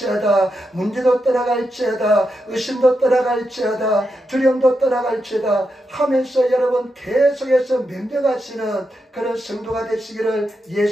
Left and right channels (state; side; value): normal; both; correlation 0.85